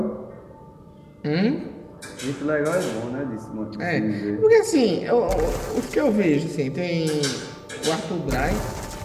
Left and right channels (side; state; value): both; identical; correlation 1.00